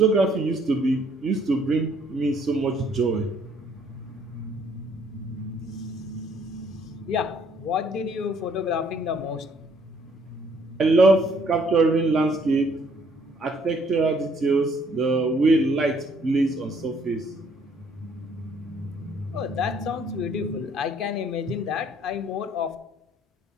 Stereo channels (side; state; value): both; normal; correlation 0.64